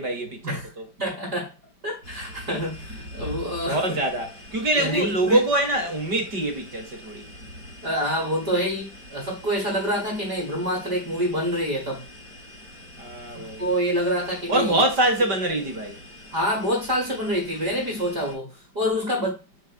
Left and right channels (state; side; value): late; left; 5.1 ms